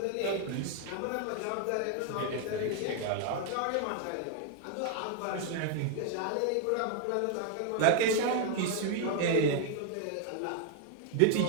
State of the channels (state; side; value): different; both; correlation 0.00